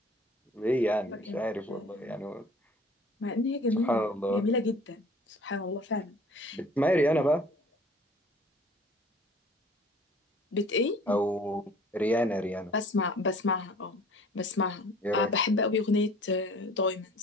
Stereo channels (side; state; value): both; normal; correlation 0.49